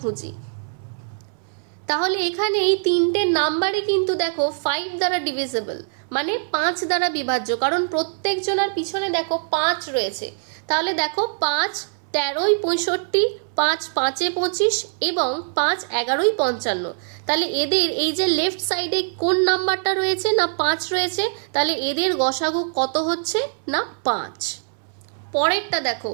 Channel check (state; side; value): silent; left; 64 dB below the other